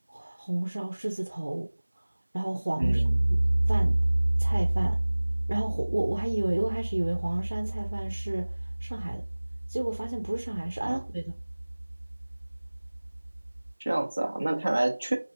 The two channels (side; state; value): both; inverted; correlation -1.00